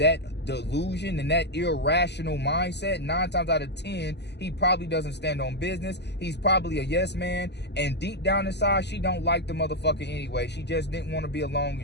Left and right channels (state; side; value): late; right; 0.50 ms